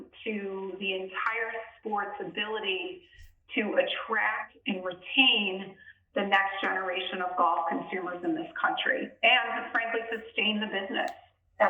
to the entire sport's ability to attract and retain the next generation of golf consumers in this country and to frankly sustain the business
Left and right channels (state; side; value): identical; both; correlation 1.00